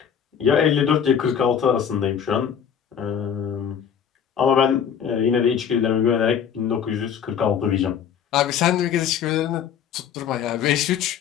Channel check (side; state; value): right; quieter; 8.1 dB